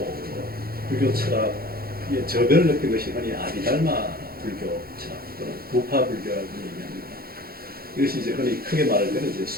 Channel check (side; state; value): left; late; 0.44 ms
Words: 불교 철학의 저변을 느낀 것이 흔히 아비달마 불교 철학 또는 부파 불교라고 얘기합니다. 이것이 이제 흔히 크게 말할 때는 이제